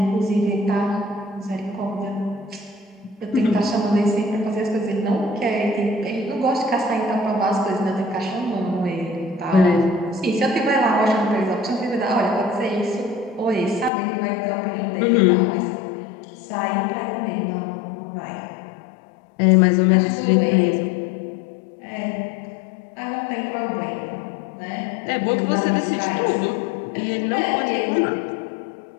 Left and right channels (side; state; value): right; drops out; at 13.9 s